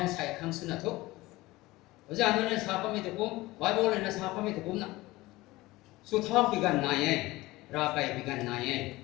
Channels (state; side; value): quieter; right; 19.5 dB